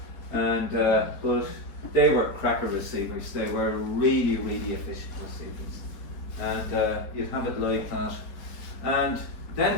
And but they were cracker receivers. They were really, really efficient receivers, and you'd have it like that. And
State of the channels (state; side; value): late; right; 4.3 ms